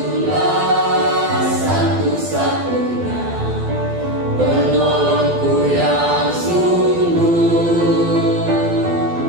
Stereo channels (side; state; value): left; late; 12 ms